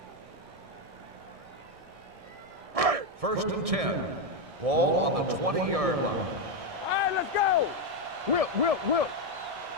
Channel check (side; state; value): left; late; 1.6 ms